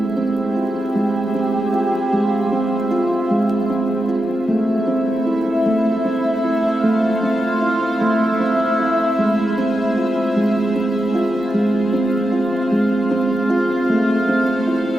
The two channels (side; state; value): both; normal; correlation 0.89